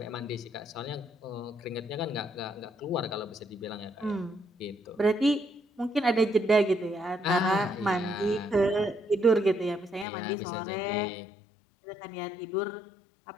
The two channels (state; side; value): drops out; right; at 10.1 s